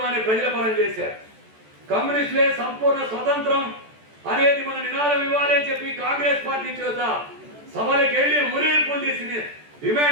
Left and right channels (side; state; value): left; late; 14 ms